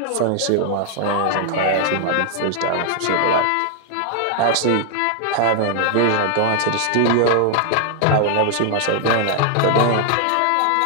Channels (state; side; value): different; both; correlation 0.00